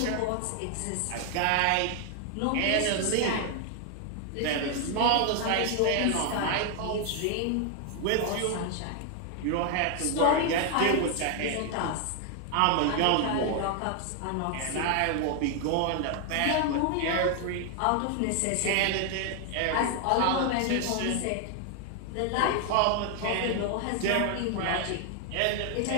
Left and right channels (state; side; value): different; both; correlation 0.00